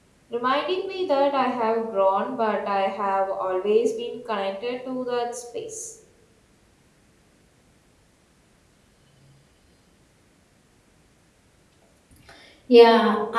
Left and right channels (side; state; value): both; identical; correlation 1.00